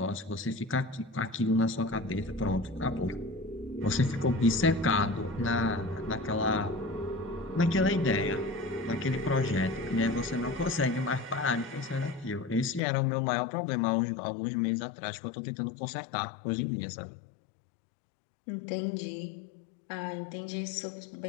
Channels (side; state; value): right; drops out; at 12.8 s